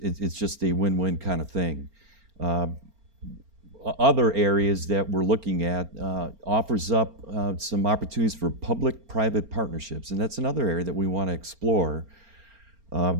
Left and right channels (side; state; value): left; late; 4.4 ms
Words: just a win-win kind of thing. Other areas that we're looking at offers up some opportunities for public-private partnerships, and that's another area that we want to explore